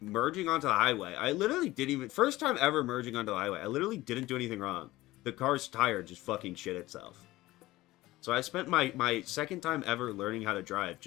onto the highway. I literally didn't even... First time ever merging onto the highway. I literally didn't do anything wrong. The car's tire just fucking shit itself. So I spent my second time ever learning how to drive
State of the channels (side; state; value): right; quieter; 17.8 dB